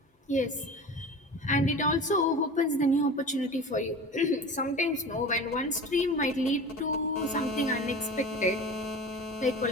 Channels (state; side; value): normal; both; correlation 0.35